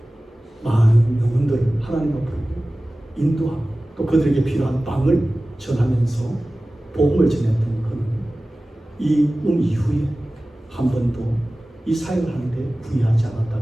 많은 영혼들을 하나님 앞으로 인도하고 또 그들에게 필요한 빵을 전하면서 복음을 전했던 그는 이 이후에 한 번도 이 사역을 하는데 부의하지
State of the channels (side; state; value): both; normal; correlation 0.97